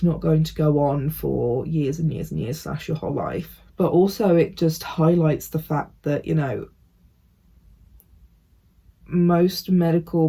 not going to go on for years and years and years / your whole life. But also it just highlights the fact that, you know, most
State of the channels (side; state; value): both; identical; correlation 1.00